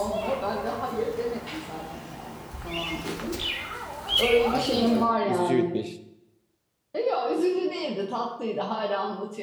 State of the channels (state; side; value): identical; both; correlation 1.00